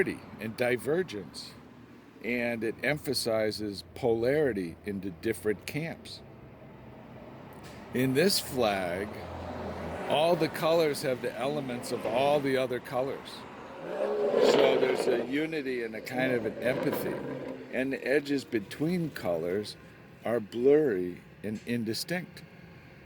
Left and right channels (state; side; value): identical; both; correlation 1.00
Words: and divergence, and it emphasizes polarity into different camps. In this flag, all the colors have the elements of all the other colors. So there's a unity and a kind of an empathy. And the edges between colors are blurry and indistinct.